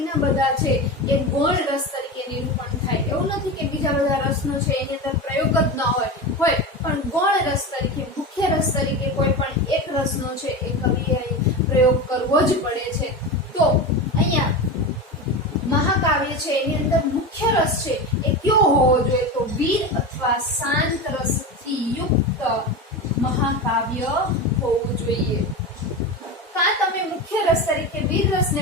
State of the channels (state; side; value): normal; both; correlation 0.23